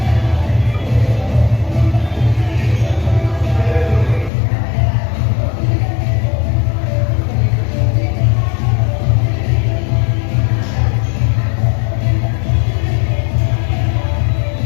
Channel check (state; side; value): drops out; right; at 4.3 s